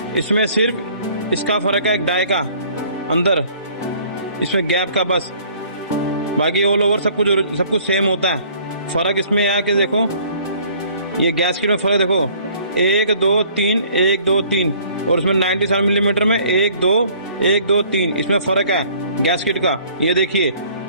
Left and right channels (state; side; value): inverted; both; correlation -0.55